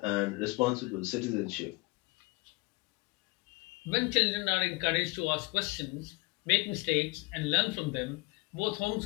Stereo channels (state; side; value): quieter; right; 26.2 dB